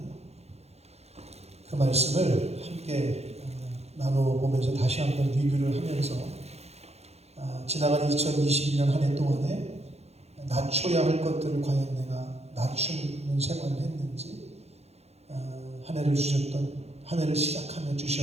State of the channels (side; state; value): left; late; 0.31 ms